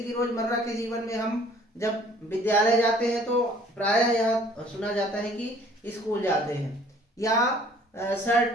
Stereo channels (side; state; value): both; normal; correlation 0.55